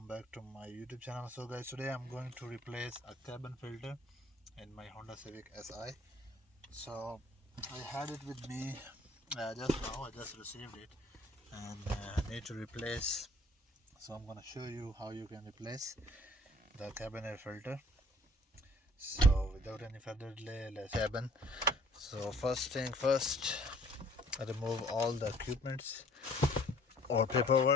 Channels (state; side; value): normal; both; correlation 0.56